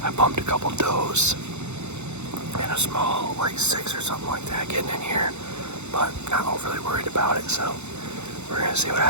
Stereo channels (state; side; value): late; left; 0.82 ms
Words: I bumped a couple does and a small, like 6 or something like that getting in here, but not overly worried about it. So we're gonna see what